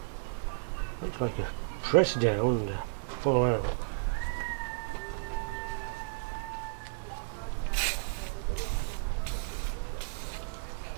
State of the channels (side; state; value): left; silent; 55 dB below the other